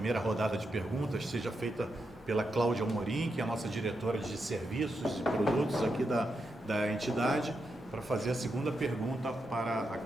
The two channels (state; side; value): normal; both; correlation 0.85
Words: rodada de perguntas seja feita pela Cláudia Amorim, que é a nossa diretora de serviços e produtos aqui da entidade, para fazer a segunda pergunta para a